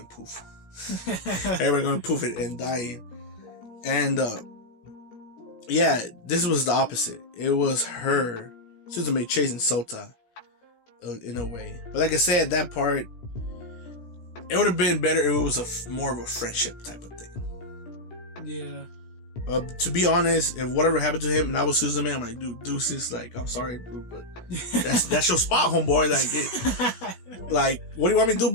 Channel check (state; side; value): late; right; 17 ms